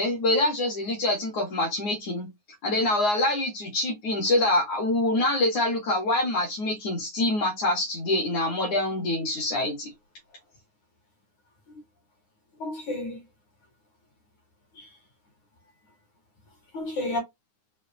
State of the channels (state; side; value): late; right; 9.6 ms